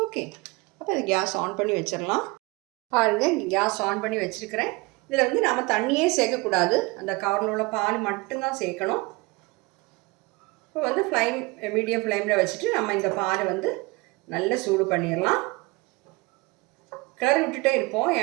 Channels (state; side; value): quieter; left; 25.2 dB